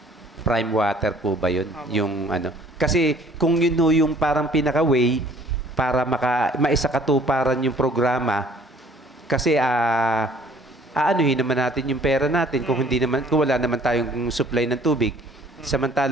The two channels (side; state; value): both; normal; correlation 0.55